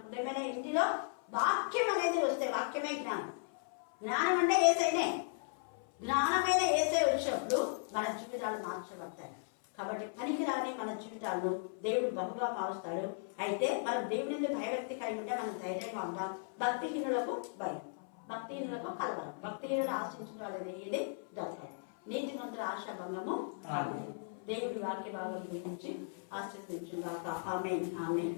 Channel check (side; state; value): right; silent; 53 dB below the other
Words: హృదయమైన ఇంటిలో వాక్యం అనేది వస్తే వాక్యమే జ్ఞానం. జ్ఞానం అంటే ఏసైనే. జ్ఞానమైన ఏసై వచ్చినప్పుడు మన జీవితాలు మార్చబడతాయి. కాబట్టి పనికిరాని మన జీవితాలను దేవుడు బహుగా మారుస్తాడు. అయితే మనం దేవుని భయభక్తి కలిగి ఉంటే మనం ధైర్యంగా ఉంటాం. భక్తిహీనులకు భయం, భక్తిహీనులకు కలవరం, భక్తిహీనులు ఆశించిన వాళ్ళది ఏది దొరకదు. నీతిమంతుల ఆశాభంగము. దేవుడి వాక్య భాగం గురించి ఆశీర్వదించుగాక. ఆమేన్, ఆమేన్.